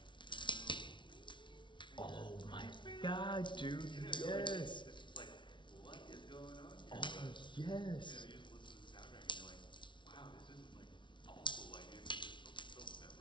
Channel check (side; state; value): right; late; 0.24 ms